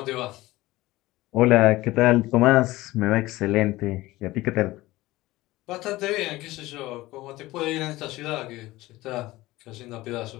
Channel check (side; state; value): right; quieter; 18.4 dB